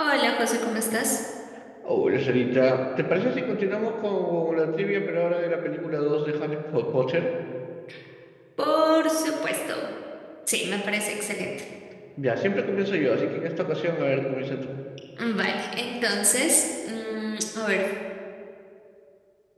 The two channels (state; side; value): identical; both; correlation 1.00